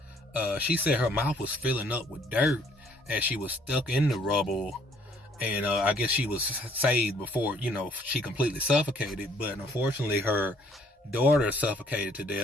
She said her mouth was filling up with dirt as she was stuck in the rubble, and I guess she was saved before, she completely suffocated, but unfortunately her daughter suffocated to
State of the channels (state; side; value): normal; both; correlation 0.62